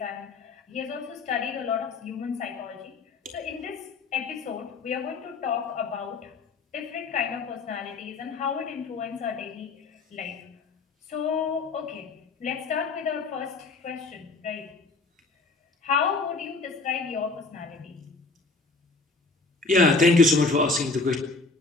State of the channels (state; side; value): quieter; right; 3.7 dB